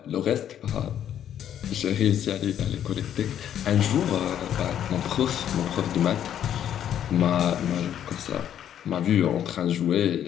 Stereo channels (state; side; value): quieter; right; 10.1 dB